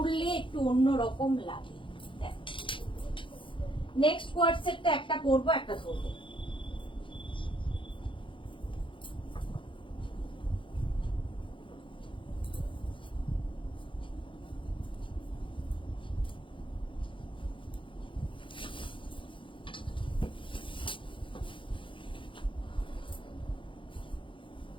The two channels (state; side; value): late; right; 0.25 ms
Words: একটু অন্যরকম লাগে। নেক্সট কোয়ার্ড সেটটা একটা পরবো, একটা ধরবো।